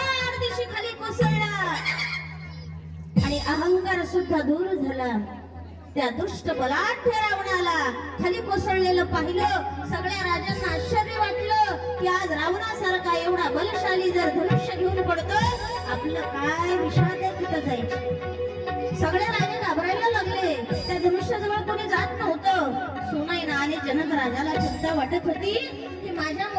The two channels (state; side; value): identical; both; correlation 1.00